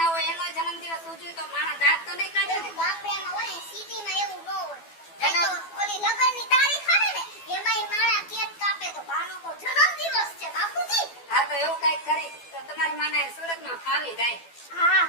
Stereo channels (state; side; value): late; right; 12 ms